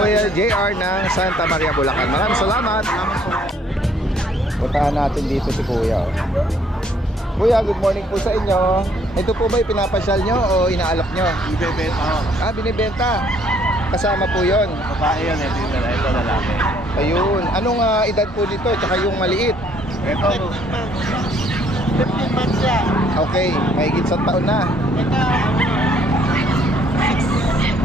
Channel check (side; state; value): both; normal; correlation 0.64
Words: JR ng Santa Maria, Bulacan. Maraming salamat. Puntahan natin dito si Kuya. Oh. Kuya, good morning po sa inyo. Ito po ba pinapasyal nyo o inaalok nyo? Ibebenta ako. Binibenta. Kasama po yon. Babae yan, ito lalaki. Ayun. Anong edad po nito? Tsaka yung maliit? Ito, 15 months yan. Okay, mahigit sa taon na. Ito,